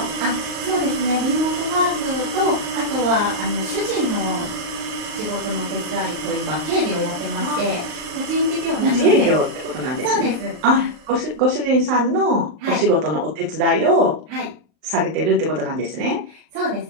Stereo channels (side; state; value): left; late; 39 ms